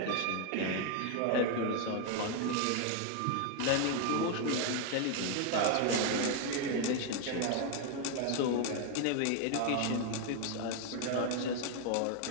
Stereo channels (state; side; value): different; both; correlation 0.01